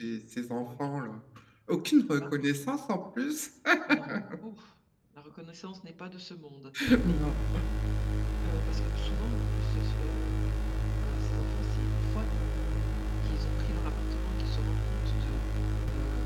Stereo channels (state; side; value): identical; both; correlation 1.00